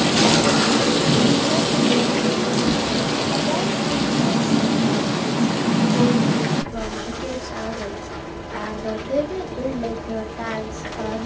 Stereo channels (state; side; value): identical; both; correlation 1.00